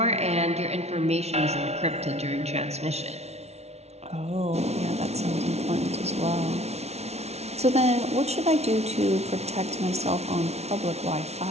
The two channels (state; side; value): late; left; 0.31 ms